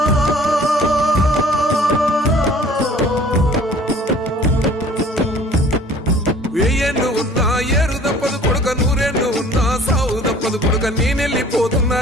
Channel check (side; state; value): both; normal; correlation 0.51